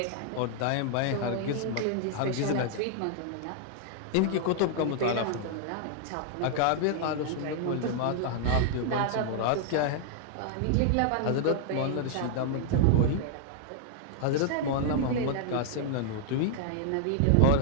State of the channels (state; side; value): different; both; correlation -0.01